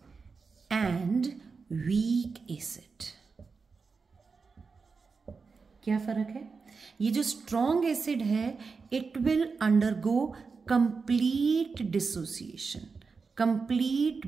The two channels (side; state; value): left; quieter; 4.8 dB